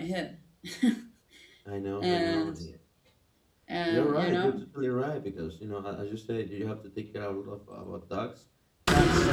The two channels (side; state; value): both; identical; correlation 1.00